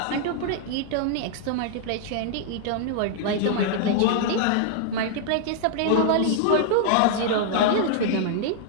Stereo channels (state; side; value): different; both; correlation -0.01